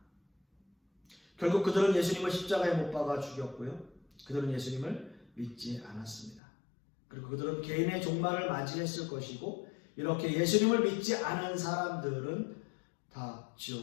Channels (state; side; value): drops out; right; at 6.4 s